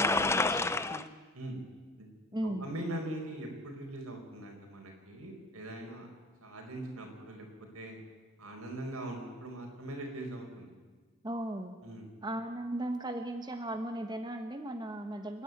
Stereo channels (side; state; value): both; normal; correlation 0.45